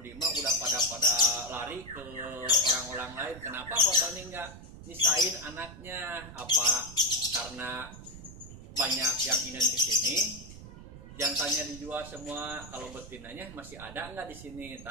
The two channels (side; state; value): right; noise; rumble, 15 dB below the sound